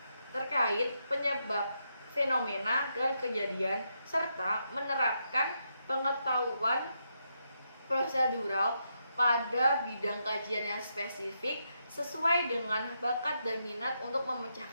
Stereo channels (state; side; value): inverted; both; correlation -0.81